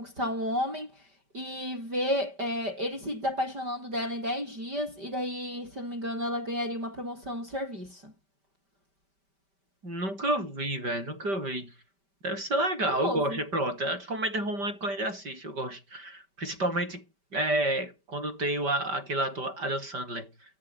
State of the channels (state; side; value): late; left; 5.1 ms